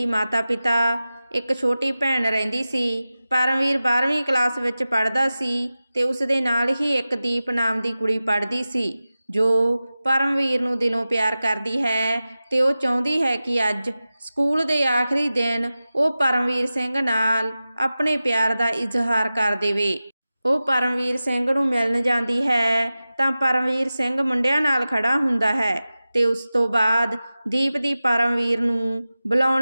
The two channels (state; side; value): inverted; both; correlation -0.95